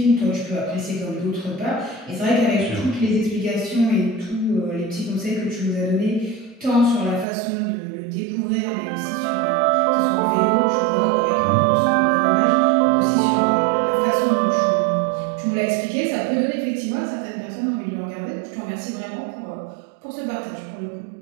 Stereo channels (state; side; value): drops out; left; at 7.2 s